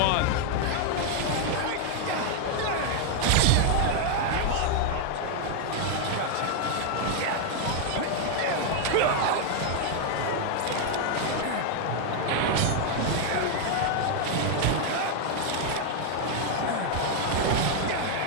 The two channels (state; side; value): different; both; correlation 0.00